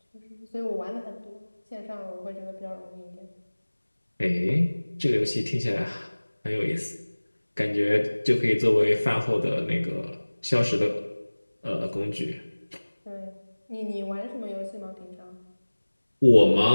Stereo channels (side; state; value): both; inverted; correlation -1.00